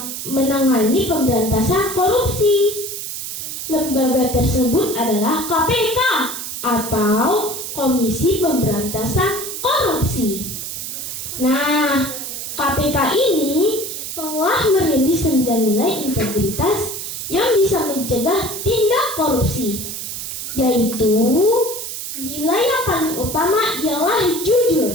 menangani pemberantasan korupsi. Lembaga tersebut adalah KPK atau Komisi Pemberantasan Korupsi. Nah, KPK ini telah merilis 9 nilai integritas yang bisa mencegah tindak korupsi, yaitu nilai yang paling utama ialah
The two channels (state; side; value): noise; right; hiss, 6 dB below the sound